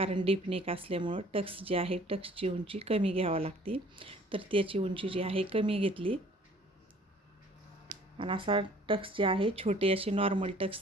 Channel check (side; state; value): both; normal; correlation 0.54